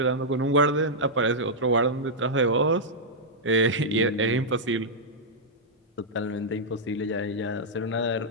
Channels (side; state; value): both; normal; correlation -0.08